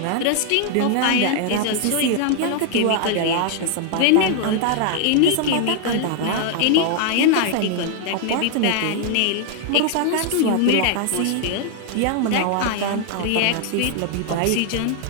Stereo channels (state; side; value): different; both; correlation 0.00